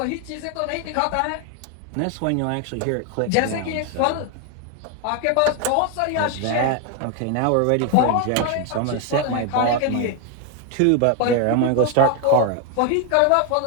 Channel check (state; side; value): different; both; correlation 0.01